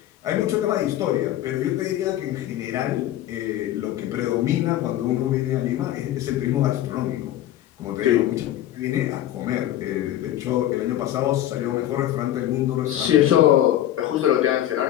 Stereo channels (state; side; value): quieter; right; 12.8 dB